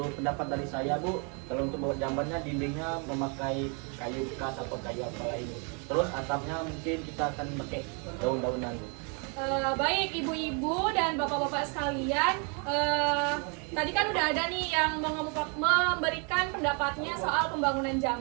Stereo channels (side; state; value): left; quieter; 35.9 dB